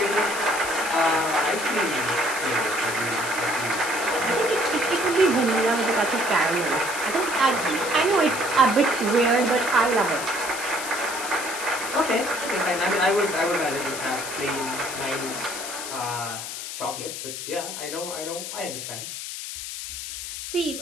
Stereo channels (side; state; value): left; noise; hiss, 7 dB below the sound